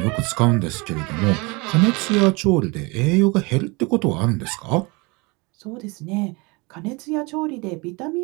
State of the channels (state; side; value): quieter; left; 26.9 dB